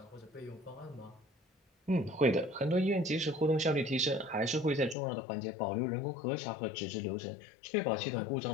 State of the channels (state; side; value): drops out; right; at 5.0 s